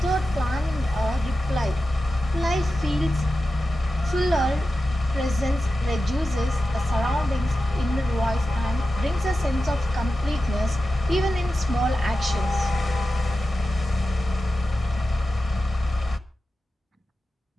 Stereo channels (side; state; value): both; normal; correlation 0.93